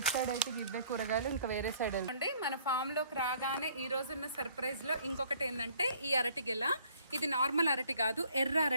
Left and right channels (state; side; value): inverted; both; correlation -0.59